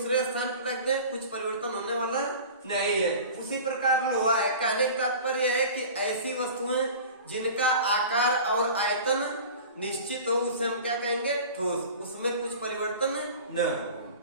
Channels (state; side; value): inverted; both; correlation -0.38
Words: स्थान पर रख दें, कुछ परिवर्तन होने वाला नहीं है। उसी प्रकार लोहा है। कहने का तात्पर्य है कि ऐसी वस्तुएं जिनका आकार और आयतन निश्चित हो उसे हम क्या कहेंगे? ठोस, उसमें कुछ परिवर्तन न हो।